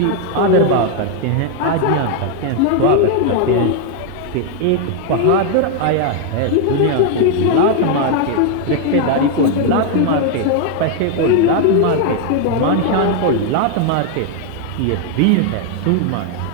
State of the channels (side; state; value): both; different; correlation 0.01